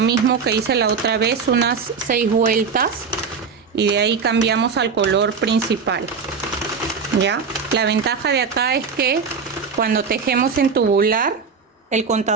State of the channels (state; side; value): quieter; left; 5.6 dB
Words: que hice la otra vez, unas 6 vueltas y de ahí cambiamos al color principal. Ya, la ventaja de acá es que cuando tejemos en tubular el